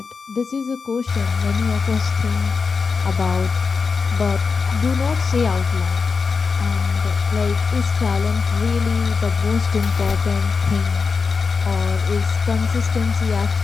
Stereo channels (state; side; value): quieter; right; 5.0 dB